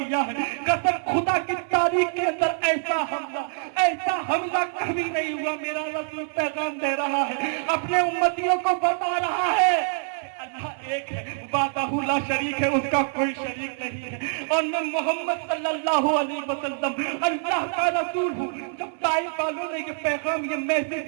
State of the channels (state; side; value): silent; left; 59 dB below the other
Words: ہے, قسم خدا کی تاریخ کے اندر ایسا حملہ کبھی نہیں ہوا. میرا رسول پیغام دے رہا ہے, اپنے امتیوں کو بتا رہا ہے اللہ ایک ہے, وحدہ لا شریک ہے, اس کا کوئی شریک نہیں ہے, اور میں محمد صلی اللہ علیہ وسلم اللہ کا رسول ہوں. جب طائف والوں نے یہ پیغام, یہ میسج,